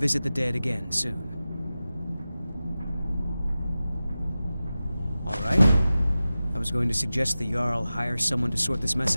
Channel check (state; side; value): inverted; both; correlation -0.95